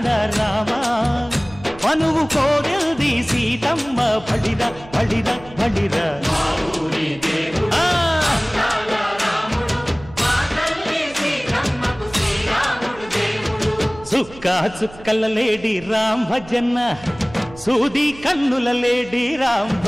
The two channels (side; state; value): right; noise; hum, 19 dB below the sound